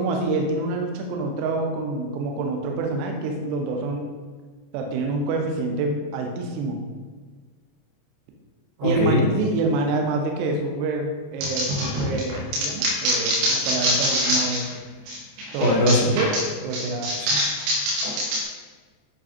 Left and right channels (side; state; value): left; late; 28 ms